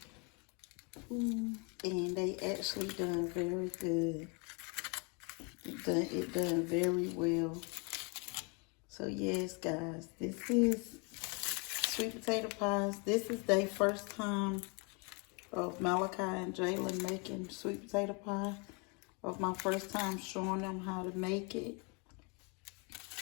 And they actually done very good. It done very well. So yes, guys, this is sweet potato pies. This is their first time of Malachi and Jalen making sweet potato pie. Of my first time showing them how to make it.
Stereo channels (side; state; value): right; quieter; 33.0 dB